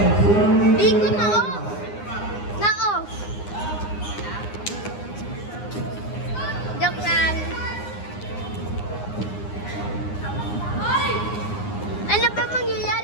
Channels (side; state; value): right; late; 9.7 ms